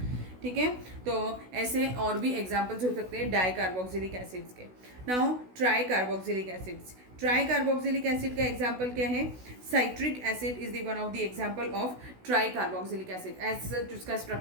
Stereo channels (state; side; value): late; left; 16 ms